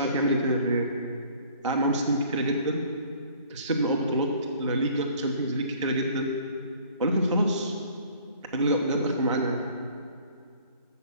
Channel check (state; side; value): inverted; both; correlation -0.53